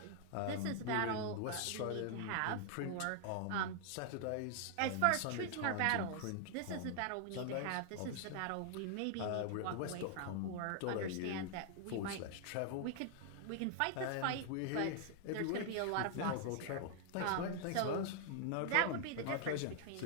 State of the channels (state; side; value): different; both; correlation 0.00